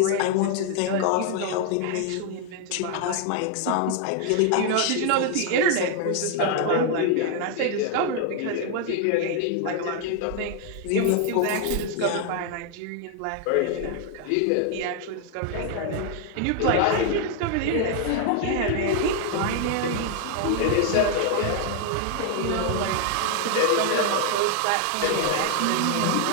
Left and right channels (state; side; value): different; both; correlation 0.00